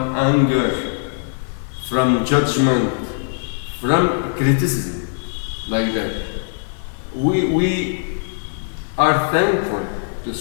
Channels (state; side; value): silent; right; digital silence